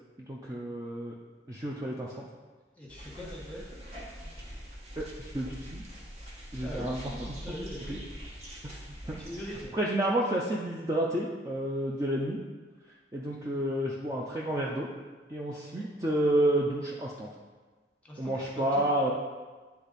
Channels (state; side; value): normal; both; correlation 0.56